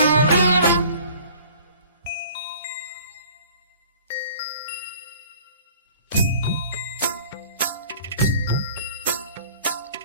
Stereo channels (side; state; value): both; inverted; correlation -0.50